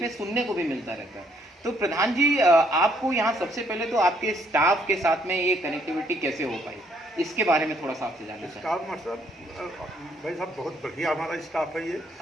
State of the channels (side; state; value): both; normal; correlation 0.69